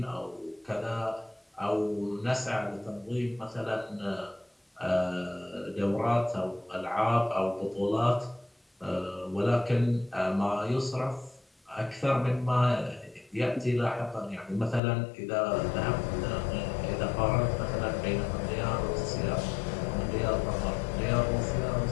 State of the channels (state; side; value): drops out; right; at 14.8 s